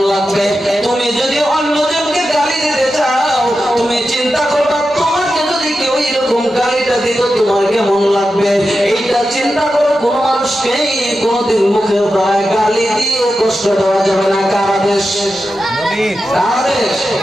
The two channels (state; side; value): normal; both; correlation 0.90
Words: লাগবে। তুমি যদি অন্যজনকে গালি দিতে চাও, তুমি চিন্তা করবা তোমাকে যদি কেউ এরকম গালিটা দিত তোমার কেমন লাগবে। এইটা চিন্তা করো। কোন মানুষকে কোনদিন মুখের দ্বারা গালি দিয়ে কষ্ট দেওয়া যাবে না। কার আদেশ?